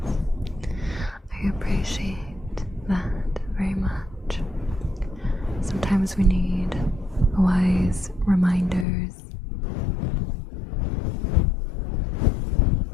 I appreciate that very much. Sometimes we need wise reminders.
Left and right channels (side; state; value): right; drops out; at 8.8 s